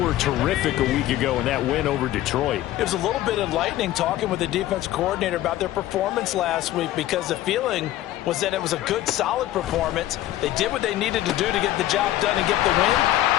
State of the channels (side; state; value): right; quieter; 14.4 dB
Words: terrific a week ago in that win over Detroit. It was a little bit enlightening talking with the defense coordinator about their performance last week, because the feeling was that it was a good, solid performance. They did what they needed to do to get the job done and get the win,